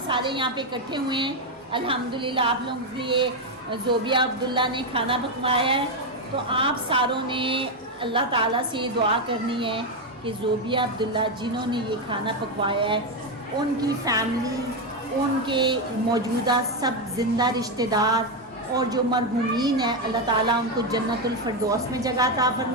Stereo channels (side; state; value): both; normal; correlation 0.06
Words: सारे यहाँ पे इकट्ठे हुए हैं। अल्हम्दुलिल्लाह आप लोगों के लिए ज़ोबिया अब्दुल्ला ने खाना पकवाया है, तो आप सारों ने अल्लाह ताला से ये दुआ करनी है कि ज़ोबिया अब्दुल्ला जिन्होंने ये खाना पकवाया है, उनकी फैमिली, उनके मौजूदा सब ज़िंदा रिश्तेदार और जो मरहूमीन है, अल्लाह ताला उनको जन्नतुल फिरदौस में जगह अता